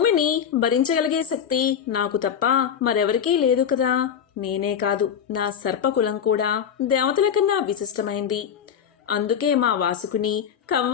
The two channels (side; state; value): right; quieter; 8.1 dB